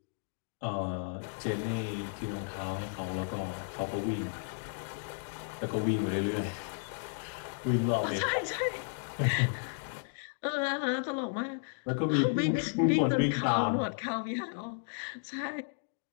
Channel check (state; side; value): silent; right; digital silence